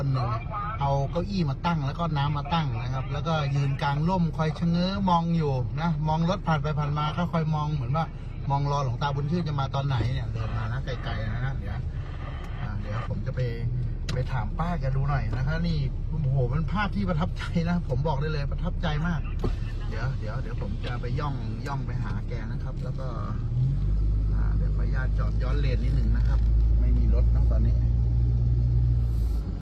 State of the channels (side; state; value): both; identical; correlation 1.00